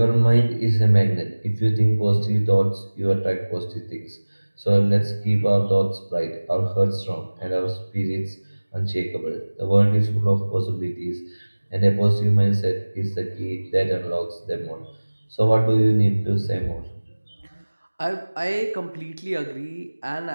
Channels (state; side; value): inverted; both; correlation -1.00